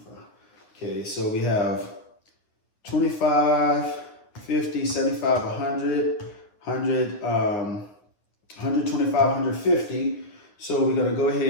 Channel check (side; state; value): right; late; 9.7 ms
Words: Okay, so we have 25, 50, 75, 100, 125, 150. So we're going to go